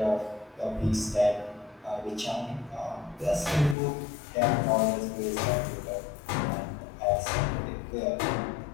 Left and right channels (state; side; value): drops out; right; at 3.8 s